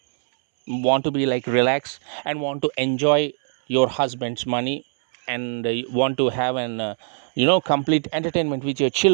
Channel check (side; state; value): left; silent; 64 dB below the other